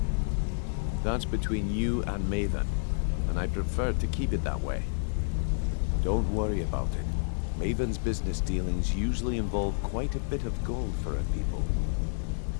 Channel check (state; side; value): silent; right; digital silence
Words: That's between you and Maven, and I prefer to keep it that way. Don't worry about it. Maven's business dealings usually involve quite a bit of gold for her people.